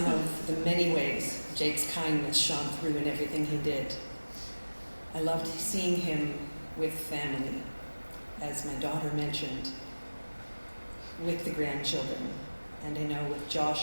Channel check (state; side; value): inverted; both; correlation -1.00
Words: of the many ways Jake's kindness shone through in everything he did. I loved seeing him with family, as my daughter mentioned, with the grandchildren, and I know with